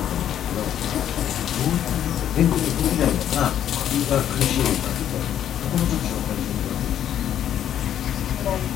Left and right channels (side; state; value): right; quieter; 10.4 dB